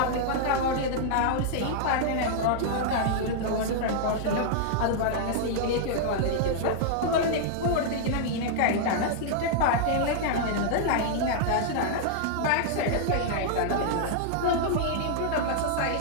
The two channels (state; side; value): different; both; correlation -0.01